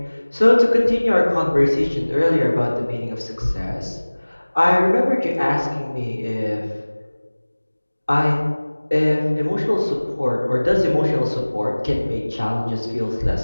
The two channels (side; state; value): both; inverted; correlation -1.00